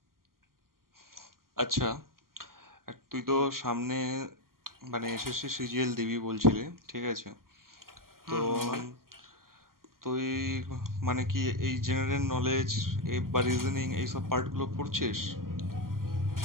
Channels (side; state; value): left; late; 0.92 ms